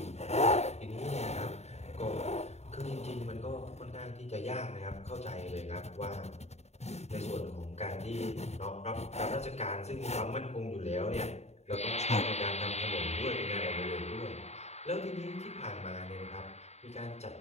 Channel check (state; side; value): late; right; 0.32 ms